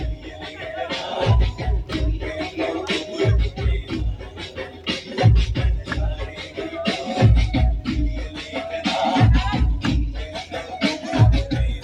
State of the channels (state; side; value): identical; both; correlation 1.00